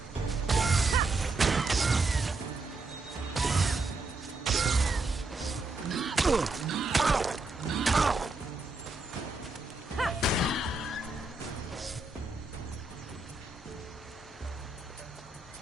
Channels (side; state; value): left; quieter; 3.4 dB